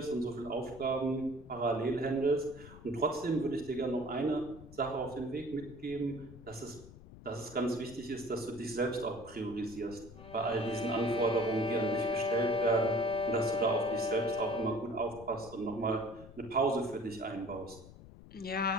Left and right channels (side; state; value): left; noise; rumble, 17 dB below the sound